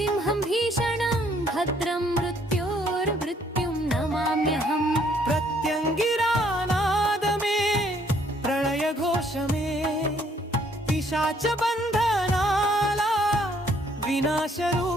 భీషణం భద్రం మృత్యోర్మృత్యుం నమామ్యహం ప్రత్యంగిరానాదమే ప్రళయ ఘోషమే పిశాచ బంధనాల వినాశ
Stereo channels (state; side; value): normal; both; correlation 0.65